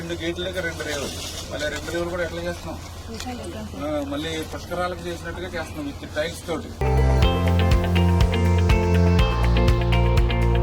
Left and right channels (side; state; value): both; identical; correlation 1.00